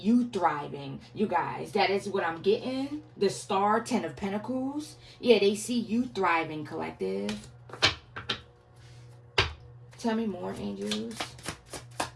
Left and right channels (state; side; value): identical; both; correlation 1.00